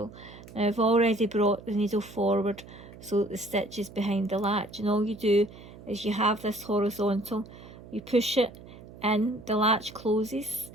Now I've already brought the needle forward so that the stitch is behind the latch, and all you do is you have this horizontal, you push it in, the latch closes,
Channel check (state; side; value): noise; right; hum, 18 dB below the sound